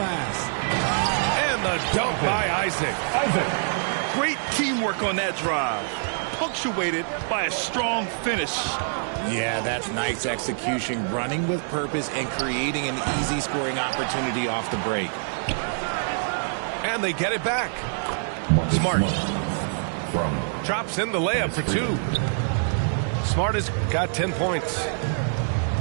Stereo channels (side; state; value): left; silent; digital silence